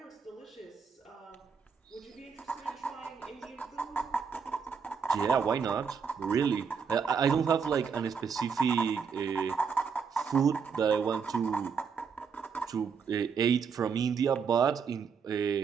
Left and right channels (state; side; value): quieter; left; 6.0 dB